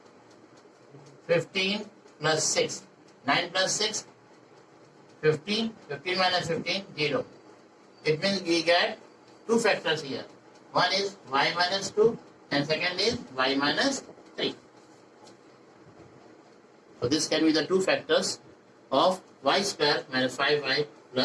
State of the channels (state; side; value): identical; both; correlation 1.00